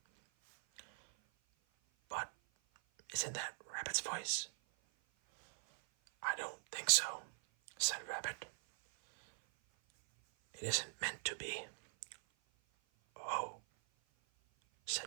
"But isn't that Rabbit's voice?" "I don't think so," said Rabbit. "It isn't meant to be." "Oh,"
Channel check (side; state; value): left; silent; 50 dB below the other